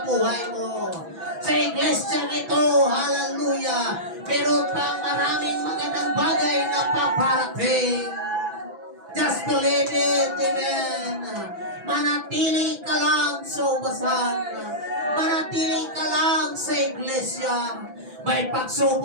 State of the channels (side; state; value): left; late; 6.0 ms